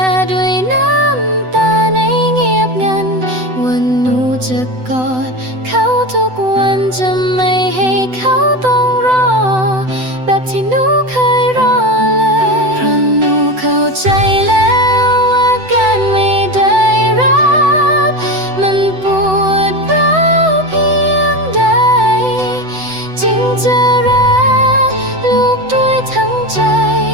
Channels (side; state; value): left; late; 7.9 ms